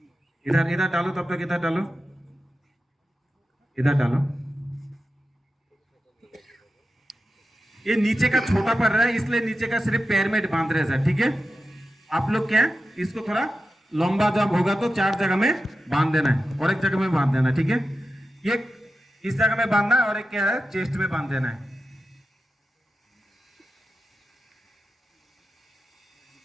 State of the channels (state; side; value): normal; both; correlation 0.91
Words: इधर इधर डालो, तब तक इधर डालो, इधर डालो। ये नीचे का छोटा पड़ रहा है इसलिए नीचे का सिर्फ पैर में बांध रहे हैं सर, ठीक है। आप लोग क्या है, इसको थोड़ा लंबा जब होगा तो 4 जगह में बांध देना है और एक जगह में बांध देना है, ठीक है। एक इस जगह में बांधना है और एक क्या है, चेस्ट में बांध देना है।